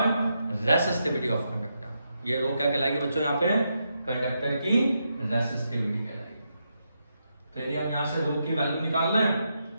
resistivity of conductor. ये रो क्या कहलाएगी बच्चों, यहाँ पे कंडक्टर की रेसिस्टिविटी कहलाएगी। तो यदि हम यहाँ से रो की वैल्यू निकाल रहे हैं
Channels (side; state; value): both; inverted; correlation -0.83